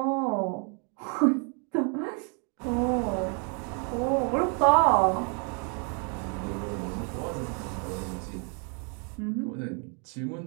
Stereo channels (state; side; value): quieter; left; 38.0 dB